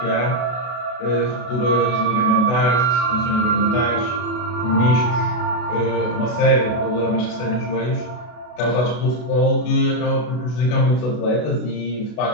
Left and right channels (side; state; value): right; late; 32 ms